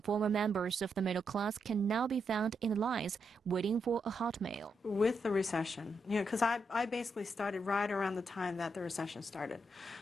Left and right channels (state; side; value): normal; both; correlation 0.81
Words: former members of the middle class can now be found in the lines waiting for a hot meal. With the recession, because I basically started right around the time that the recession started.